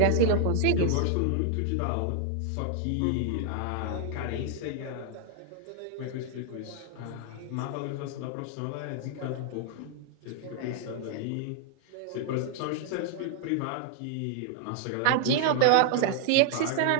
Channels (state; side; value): different; both; correlation -0.01